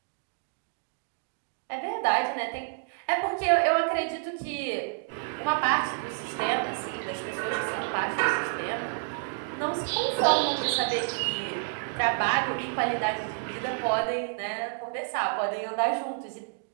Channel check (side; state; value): left; silent; digital silence